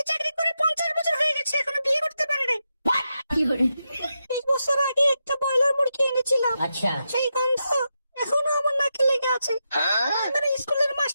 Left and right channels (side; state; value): both; inverted; correlation -0.87